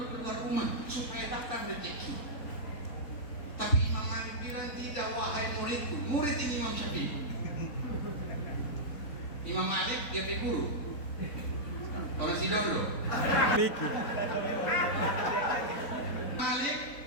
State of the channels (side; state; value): right; late; 4.0 ms